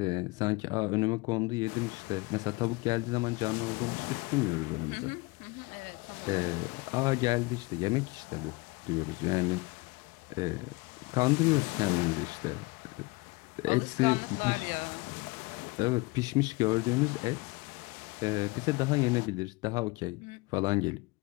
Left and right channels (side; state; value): right; quieter; 24.4 dB